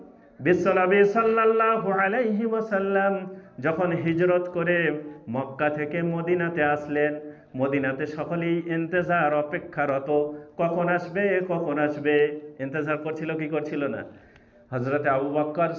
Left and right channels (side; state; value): both; identical; correlation 1.00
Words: বিশ্বনবী সাল্লাল্লাহু আলাইহি ওয়াসাল্লাম যখন হিজরত করে মক্কা থেকে মদিনাতে আসলেন, মদিনাতে সকলেই ইন্তজার, অপেক্ষারত, কখন আসবে কখন আসবে, ইন্তজার করছিল কি করছিল না? হযরত আবু বকর